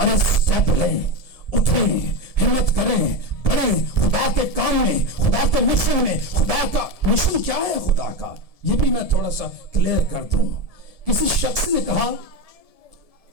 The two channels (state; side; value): late; right; 1.7 ms